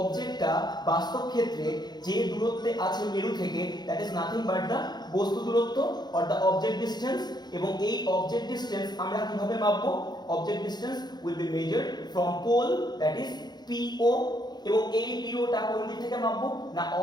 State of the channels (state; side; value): late; right; 0.20 ms